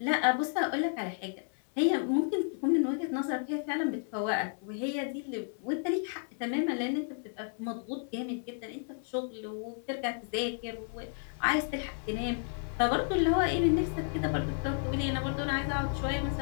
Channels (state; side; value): silent; right; 56 dB below the other